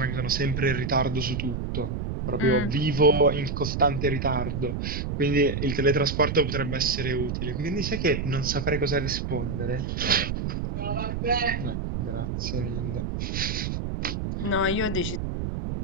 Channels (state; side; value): noise; right; rumble, 3 dB below the sound